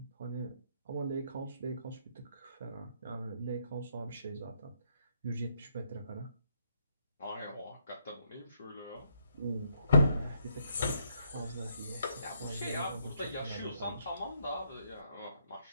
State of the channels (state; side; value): inverted; both; correlation -0.74